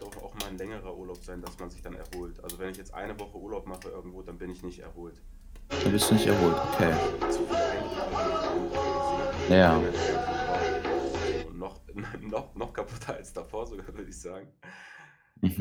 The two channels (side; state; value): both; identical; correlation 1.00